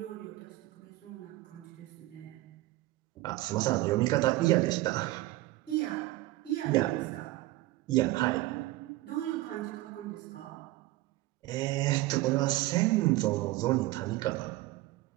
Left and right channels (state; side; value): quieter; left; 17.9 dB